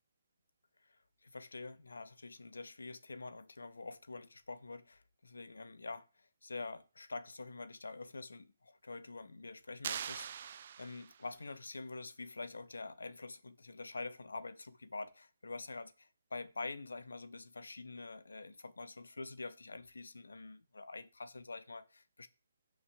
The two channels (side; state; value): both; inverted; correlation -0.89